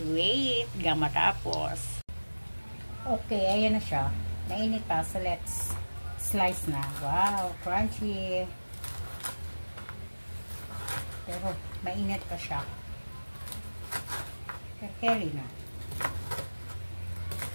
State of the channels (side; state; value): both; inverted; correlation -1.00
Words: wait hanggang matapos. Okay, ayan na siya. Mainit pa. So, let's slice na. Wow, crunchy. Pero, mainit pa siya. Carry na.